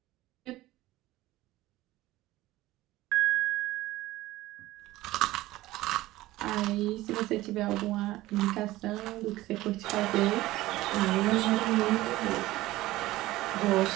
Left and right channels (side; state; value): left; quieter; 17.2 dB